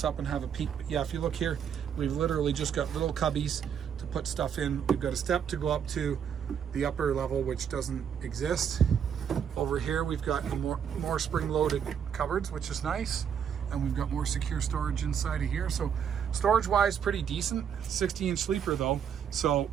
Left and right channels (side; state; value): left; quieter; 8.1 dB